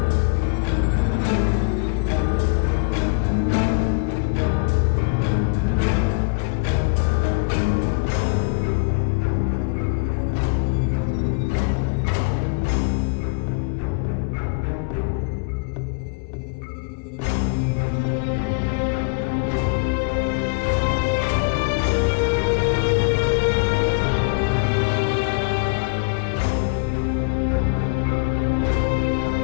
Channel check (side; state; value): right; quieter; 35.7 dB